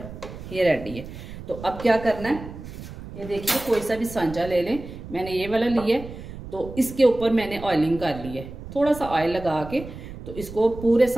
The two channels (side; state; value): right; noise; rumble, 12 dB below the sound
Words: ये रेडी है। तो अब क्या करना है, ये देखिए कोई सा भी सांचा ले लें। मैंने ये वाला लिया है, तो इसके ऊपर मैंने ऑयलिंग कर ली है। थोड़ा सा ऑयल लगा के तो इसको पूरे